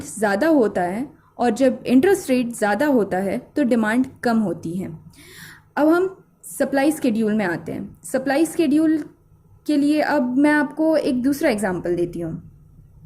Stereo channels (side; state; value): both; identical; correlation 1.00